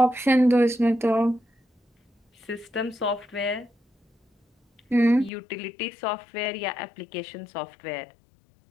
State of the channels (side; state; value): right; drops out; at 5.3 s